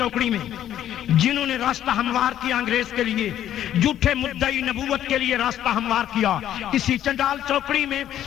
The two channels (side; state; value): right; quieter; 11.4 dB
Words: میں، جنہوں نے راستہ ہموار کیا انگریز کے لیے، جھوٹے مدعی نبوت کے لیے راستہ ہموار کیا۔ اسی چنڈال چوکڑی میں